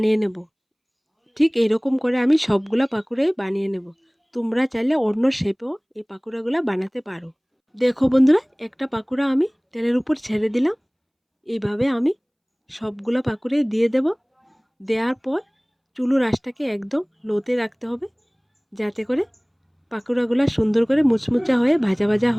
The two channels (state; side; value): identical; both; correlation 1.00